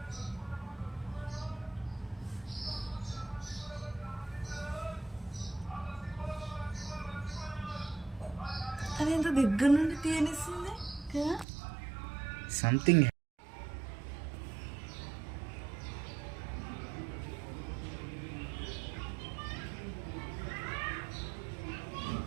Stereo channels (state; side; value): drops out; left; at 11.5 s